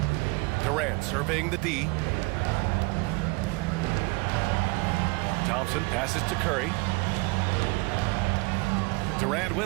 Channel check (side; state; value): left; quieter; 27.1 dB